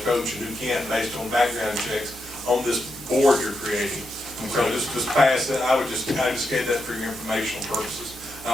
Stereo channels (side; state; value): both; normal; correlation 0.84